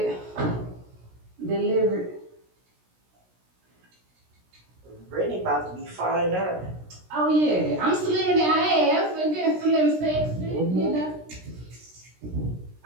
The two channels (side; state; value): left; late; 16 ms